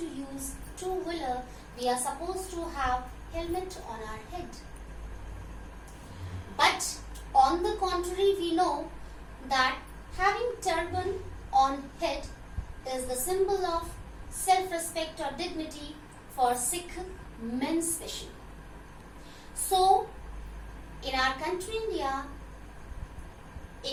use two-wheeler, we are supposed to have helmet on our head. But on the contrary, we know that having turban on head is the symbol of self-respect or dignity for Sikh men especially. So, in our country India,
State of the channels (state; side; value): identical; both; correlation 1.00